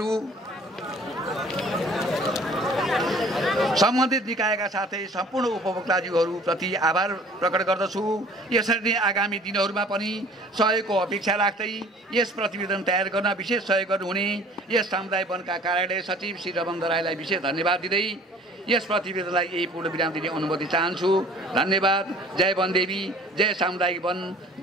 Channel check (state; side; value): normal; both; correlation 0.50